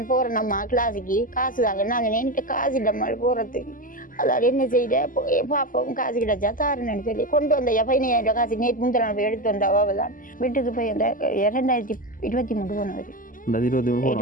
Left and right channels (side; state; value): right; late; 0.39 ms